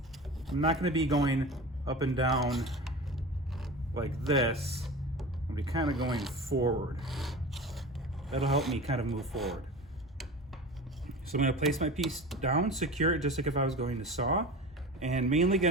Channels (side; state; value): both; normal; correlation 0.32